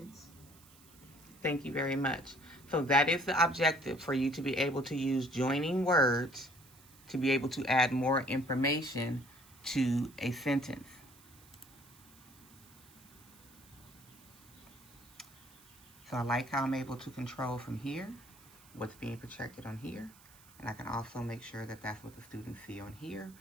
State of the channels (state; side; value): noise; right; hiss, 24 dB below the sound